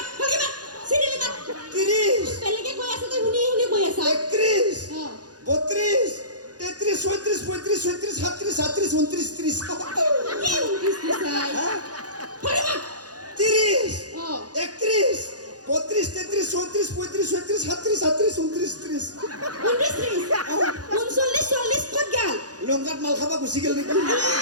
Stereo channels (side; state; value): left; late; 0.68 ms